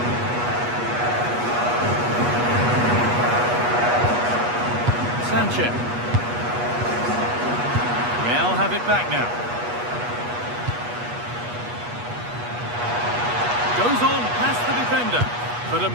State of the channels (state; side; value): late; left; 8.3 ms